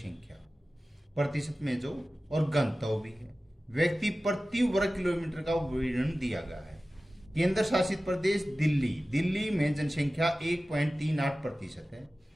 प्रतिशत में जो और गणतव्य भी है, व्यक्ति प्रति वर्ग किलोमीटर का विवरण दिया गया है। केंद्र शासित प्रदेश दिल्ली में जनसंख्या 1.38% है।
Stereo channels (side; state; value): both; normal; correlation 0.96